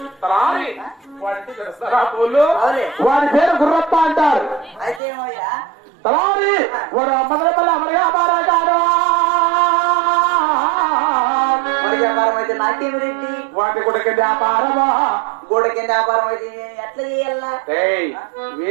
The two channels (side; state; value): left; drops out; at 5.0 s